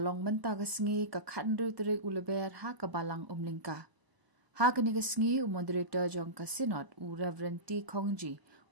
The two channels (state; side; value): late; left; 1.0 ms